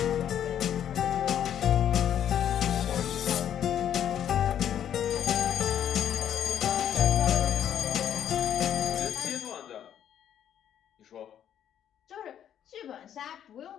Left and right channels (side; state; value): right; quieter; 9.9 dB